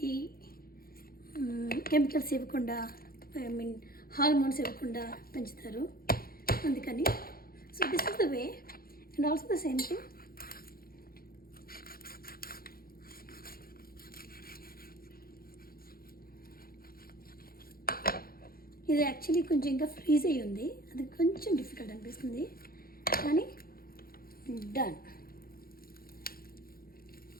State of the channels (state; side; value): late; right; 0.43 ms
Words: కెమికల్స్ ఇవ్వకుండా, హార్మోన్స్ ఇవ్వకుండా పెంచుతారు, అందుకని. So this is the way. And also the same thing, ఇది యాక్చువల్లీ కొంచెం ఇంకా ఫ్రీజ్ అయ్యి ఉంది, అది కొంచెం డిఫికల్ట్ అనిపిస్తుంది, కానీ డన్.